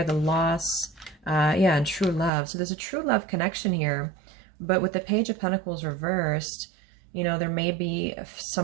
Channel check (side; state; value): left; drops out; at 2.3 s